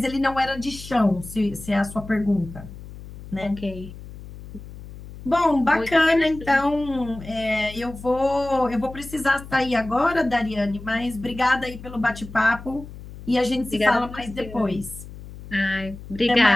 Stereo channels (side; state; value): left; noise; hum, 15 dB below the sound